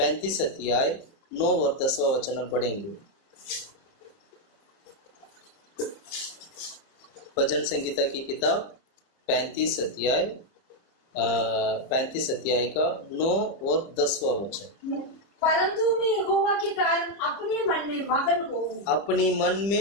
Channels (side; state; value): right; late; 30 ms